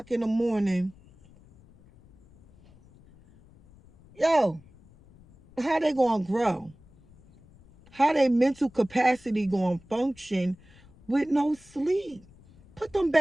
in the morning. Yo, how they going to grow? How their mental capacity going to function with no sleep? Put them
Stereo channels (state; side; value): noise; left; rumble, 26 dB below the sound